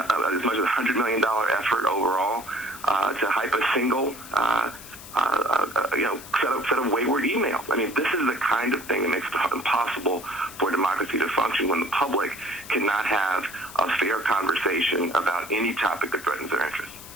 much as $100 million effort overall to hype a single set of wayward emails. I mean, this is the kind of thing that makes it impossible for democracy to function when the public cannot have a fair conversation about any topic that threatens their interests.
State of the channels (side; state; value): left; noise; hiss, 16 dB below the sound